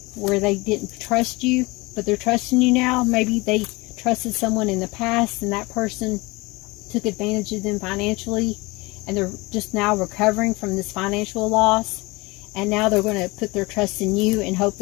where they didn't trust you, but they're trusting you now. Maybe they trusted someone in the past, and that person took advantage of them financially, and they're just now recovering from this financial loss, and now they're going to put their trust in you and hope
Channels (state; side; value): quieter; right; 23.9 dB